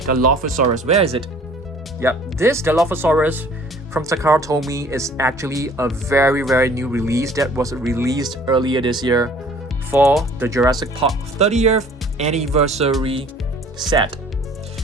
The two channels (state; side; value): normal; both; correlation 0.52